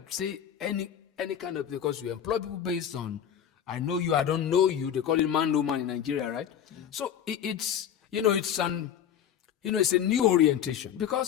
say any kind of, because we employ people based on, I know you, I don't know you. They call it man, no man in Nigeria, right? So it's a new orientation.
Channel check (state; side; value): quieter; right; 9.3 dB